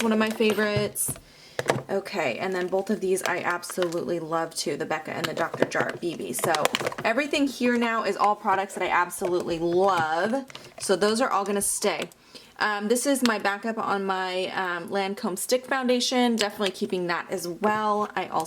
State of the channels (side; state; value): both; identical; correlation 1.00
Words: one of my favorites. Okay, and then both of these I absolutely love too, the Becca and the Dr. Jart BB. So everything here now is all products that I absolutely love. So those are all going to stay. This is my backup on my Lancome Stick Foundation. Definitely keeping that as well. I